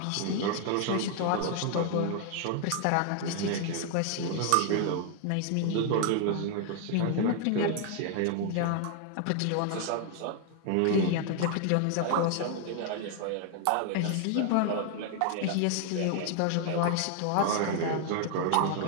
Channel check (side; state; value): both; different; correlation 0.00